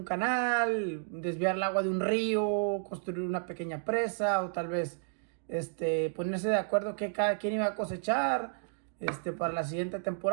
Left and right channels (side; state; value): left; silent; digital silence